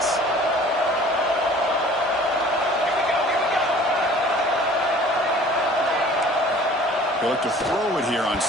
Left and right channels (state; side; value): normal; both; correlation 0.49